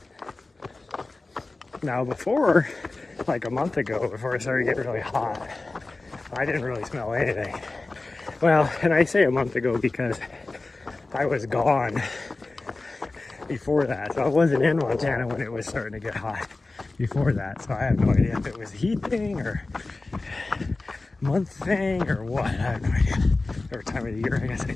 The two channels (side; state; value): right; quieter; 3.3 dB